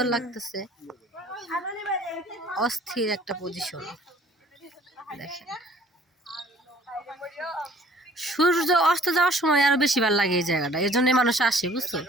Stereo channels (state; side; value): normal; both; correlation 0.54